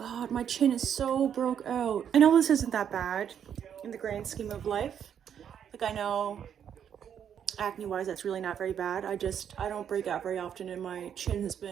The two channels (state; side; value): quieter; left; 8.7 dB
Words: my chin is so broke out. I know this isn't that bad in the grand scheme of life. Like I know acne wise that's really not very bad. I don't break out very often and my chin has